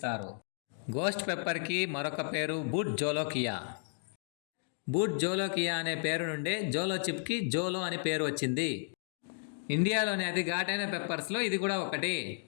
గోస్ట్ పెప్పర్కి మరొక పేరు బూట్ జోలోకియా. బూట్ జోలోకియా అనే పేరు నుండే జోలో చిప్కి జోలో అని పేరు వచ్చింది. ఇండియాలోని అతి ఘాటైన పెప్పర్స్లో ఇది కూడా ఒకటి.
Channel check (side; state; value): right; silent; digital silence